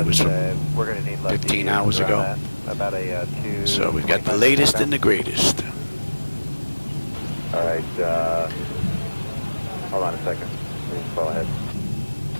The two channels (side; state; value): both; inverted; correlation -1.00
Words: was from we're going to need 15 hours ago. About a 2. So we've got the latest and the greatest. All right. Hold on a second. Please fall ahead.